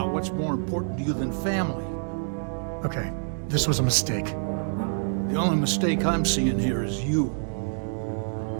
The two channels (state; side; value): silent; left; digital silence